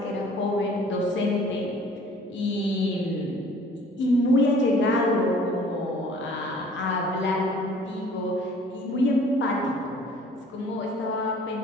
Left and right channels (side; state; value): both; normal; correlation 0.52